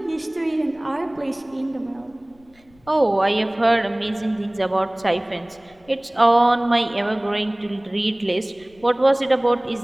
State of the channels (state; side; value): noise; left; rumble, 30 dB below the sound